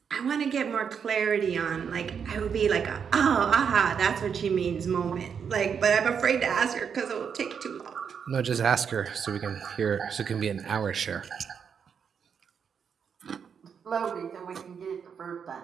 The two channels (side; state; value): left; quieter; 7.0 dB